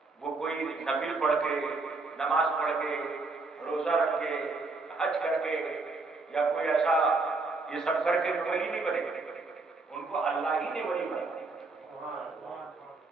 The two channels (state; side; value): quieter; left; 3.7 dB